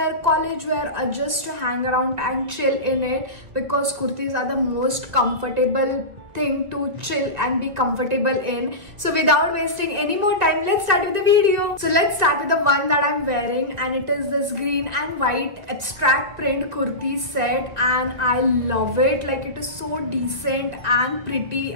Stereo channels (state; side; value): late; left; 1.9 ms